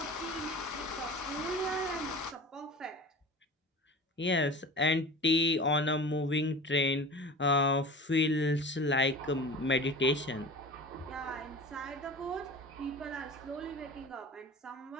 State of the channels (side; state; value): both; normal; correlation 0.36